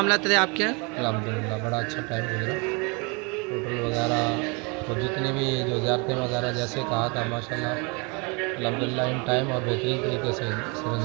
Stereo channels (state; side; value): quieter; left; 31.3 dB